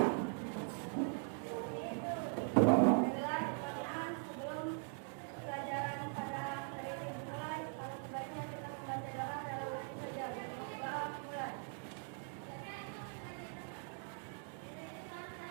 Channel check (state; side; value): silent; left; 50 dB below the other